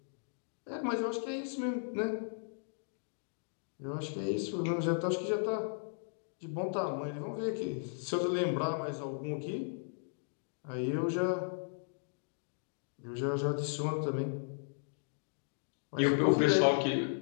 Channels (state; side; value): silent; right; digital silence